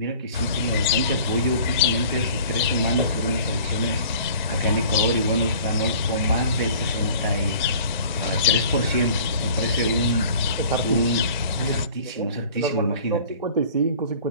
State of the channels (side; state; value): both; inverted; correlation -0.48